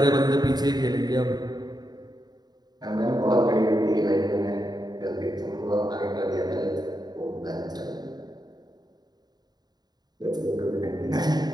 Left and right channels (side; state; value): left; late; 0.20 ms